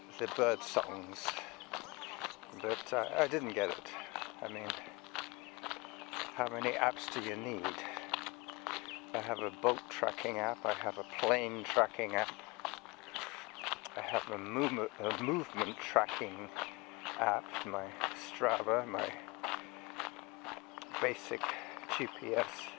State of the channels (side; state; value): right; quieter; 25.9 dB